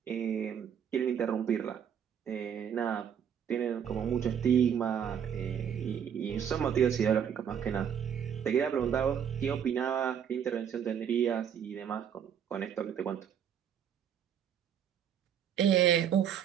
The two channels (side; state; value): left; quieter; 8.5 dB